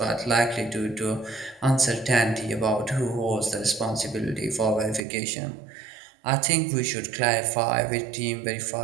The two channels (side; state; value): left; drops out; at 5.0 s